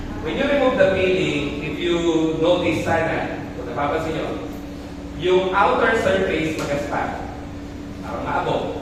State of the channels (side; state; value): both; identical; correlation 1.00